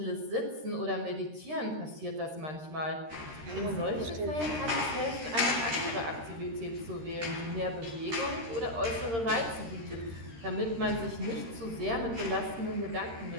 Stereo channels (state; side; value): late; left; 13 ms